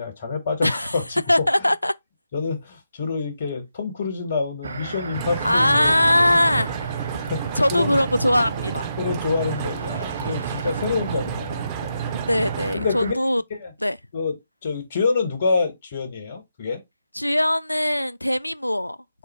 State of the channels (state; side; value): inverted; both; correlation -0.86